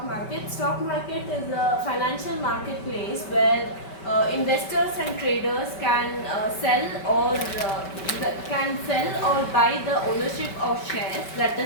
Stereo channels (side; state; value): right; late; 5.2 ms